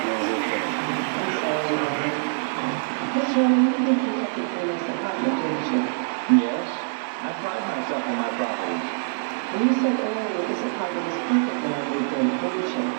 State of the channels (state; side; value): silent; left; 60 dB below the other